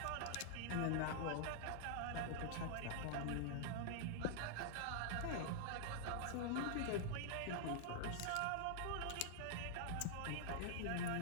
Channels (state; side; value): different; both; correlation -0.01